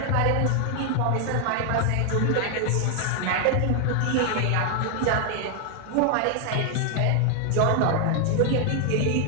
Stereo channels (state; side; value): different; both; correlation 0.00